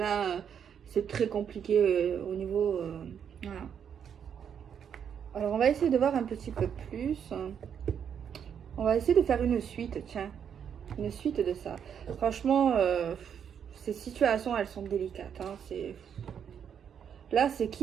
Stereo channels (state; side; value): quieter; left; 8.0 dB